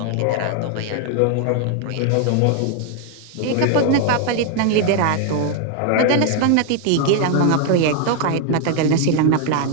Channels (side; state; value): both; different; correlation 0.00